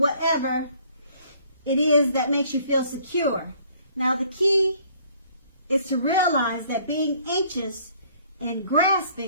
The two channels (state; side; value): inverted; both; correlation -0.59